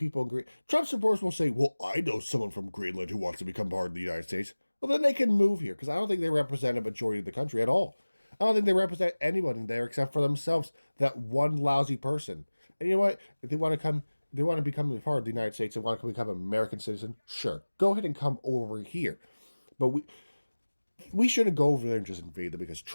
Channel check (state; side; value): inverted; both; correlation -1.00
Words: agree. Trump supporters will say, well, I know someone from Greenland who wants to become part of the United States. Well, then they can move here because I don't think they represent a majority of the country at all. I don't think they represent anyone in there except for themselves, that one lousy person. And you know what? If they want to become a part of the United States, they want to become an American citizen, sure. Go ahead and come over here. But we shouldn't go over there and just invade them because